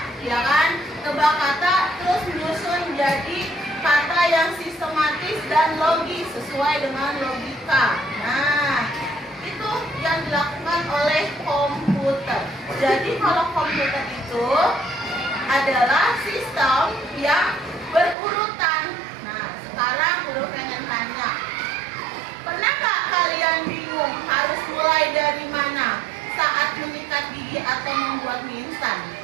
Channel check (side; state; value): left; drops out; at 18.2 s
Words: ya kan? Tebak kata terus menyusun jadi kata yang sistematis dan logis sesuai dengan logika. Nah, itu yang dilakukan oleh komputer. Jadi kalau komputer itu adalah sistem yang berurutan. Nah, sekarang Guru pengen tanya, pernah nggak kalian bingung harus mulai dari mana saat menyikat gigi atau membuat mie instan?